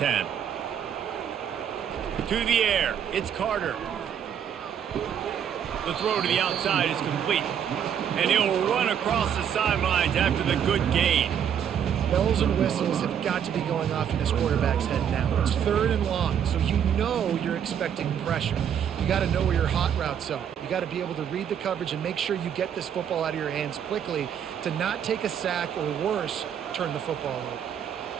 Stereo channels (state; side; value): quieter; left; 8.7 dB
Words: To the air, it's Carter. The throw to the outside is complete. And he'll run across the sidelines after the good gain. Bells and whistles have got to be going off in this quarterback's head now. It's 3rd and long, so you know you're expecting pressure. You got to know where your hot routes are. You got to be able to read the coverage and make sure you get this football out of your hands quickly to not take a sack or worse, turn the football over.